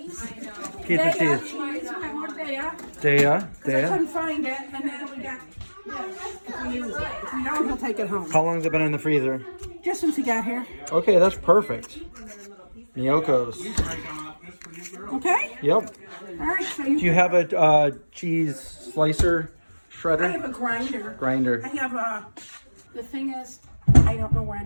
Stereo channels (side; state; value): both; inverted; correlation -1.00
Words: Pizza Daya cheese. We got more Daya. Daya. I couldn't find it. And then we got this. If we use it. If we don't, he'll take it home. How long has it been in the freezer? Just since he got here. Okay, that's perfect. Miyoko's. Okay? Yep. All right. So Do you have a cheese slicer I shredder? have a grinder. Grinder. I have a. The thing is, I don't know where